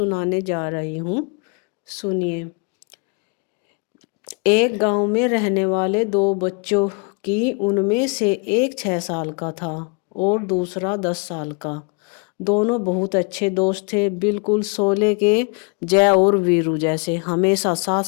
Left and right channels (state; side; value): quieter; right; 33.7 dB